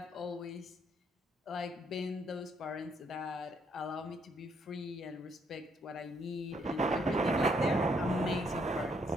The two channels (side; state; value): both; normal; correlation 0.71